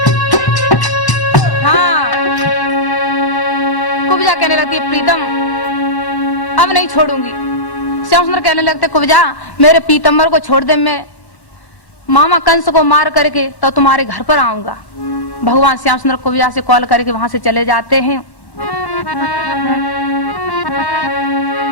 हाँ, कुब्जा कहने लगती है प्रीतम अब नहीं छोड़ूंगी। श्याम सुंदर कहने लगते कुब्जा मेरे पीतम्बर को छोड़ दे, मैं मामा कंस को मार करके तो तुम्हारे घर पर आऊंगा। भगवान श्याम सुंदर कुब्जा से कॉल करके वहां से चले जाते हैं।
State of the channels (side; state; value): right; late; 1.1 ms